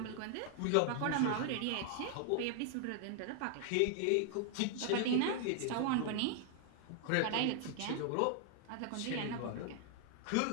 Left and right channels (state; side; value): different; both; correlation 0.00